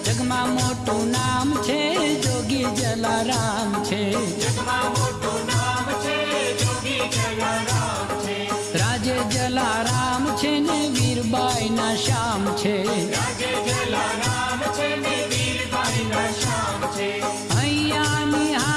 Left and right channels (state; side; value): identical; both; correlation 1.00